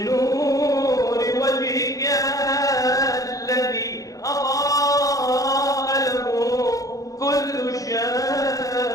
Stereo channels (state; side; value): late; right; 0.17 ms